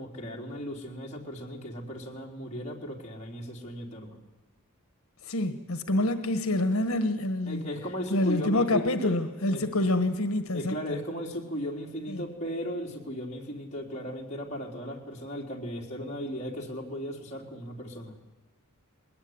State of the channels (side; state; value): both; normal; correlation 0.34